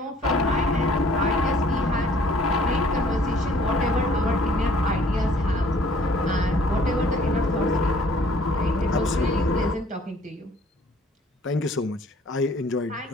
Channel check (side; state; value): both; normal; correlation 0.57